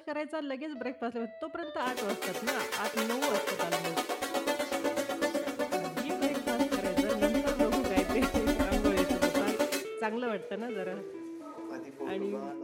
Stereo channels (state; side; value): identical; both; correlation 1.00